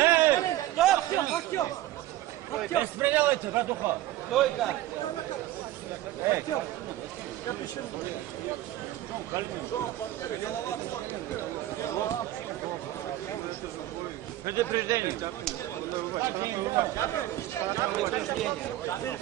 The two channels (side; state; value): left; quieter; 14.6 dB